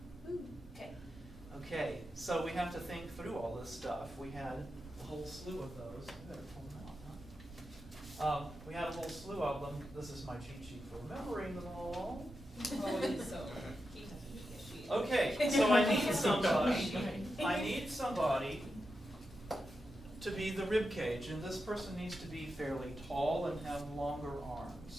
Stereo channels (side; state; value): both; normal; correlation 0.89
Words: Okay. Okay, so we have to think through all this stuff. We had a whole slew of those. I better pull them out, huh? We had a whole slew of them. This is my cheat sheet for remembering them all. Okay, so I need somebody to be the rib cage, and this person needs to be fairly tall and have longer